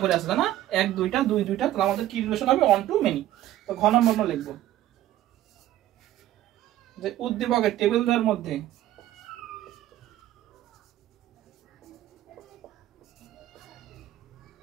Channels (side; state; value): left; quieter; 13.7 dB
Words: করে আছে, তাই না? 1 2টা 2 2টা, তাহলে আমাদের কি রিলেশন হবে? One to many. তো ঘ নাম্বার আমরা লিখবো যে উদ্দীপকের টেবিলদের মধ্যে